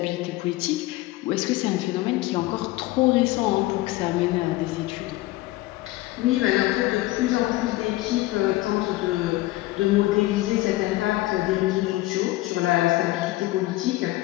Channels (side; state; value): right; quieter; 18.4 dB